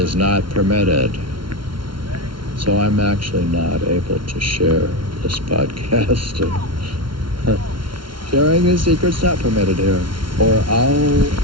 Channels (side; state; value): left; late; 0.73 ms